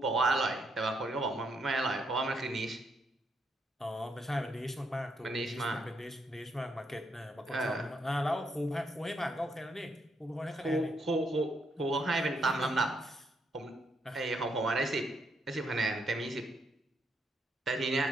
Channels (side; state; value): both; normal; correlation 0.76